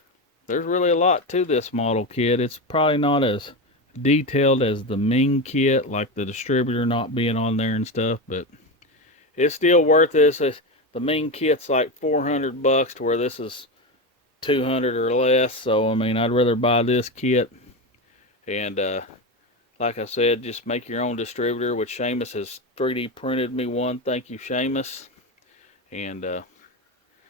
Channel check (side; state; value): both; normal; correlation 0.17